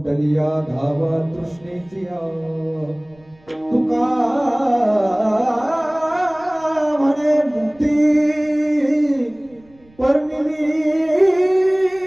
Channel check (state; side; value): noise; right; rumble, 30 dB below the sound